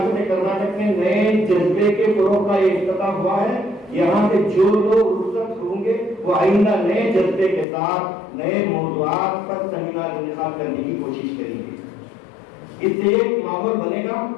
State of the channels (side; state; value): right; drops out; at 7.7 s